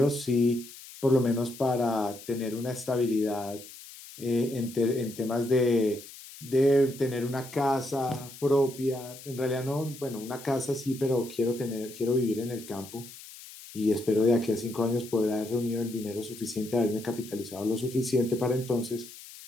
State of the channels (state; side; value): noise; left; hiss, 16 dB below the sound